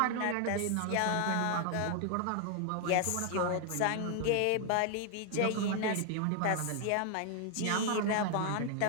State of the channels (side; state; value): both; different; correlation 0.00